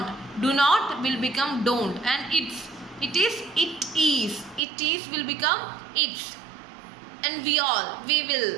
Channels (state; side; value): drops out; left; at 4.6 s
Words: Do not will become don't, and it is will become it's. And we all, we